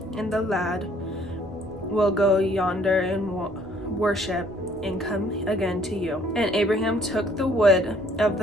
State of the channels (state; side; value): normal; both; correlation 0.61